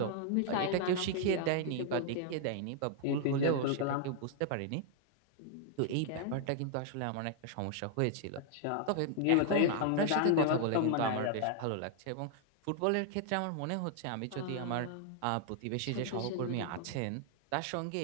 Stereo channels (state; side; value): different; both; correlation 0.00